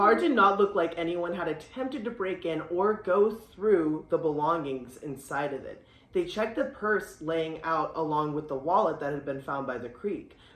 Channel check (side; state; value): both; identical; correlation 1.00